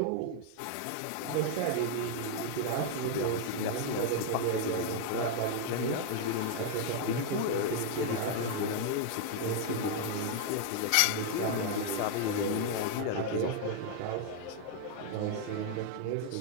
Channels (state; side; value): different; both; correlation 0.00